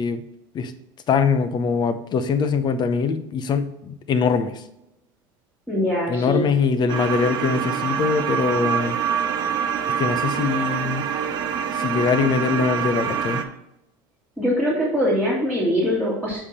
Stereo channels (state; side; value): normal; both; correlation 0.46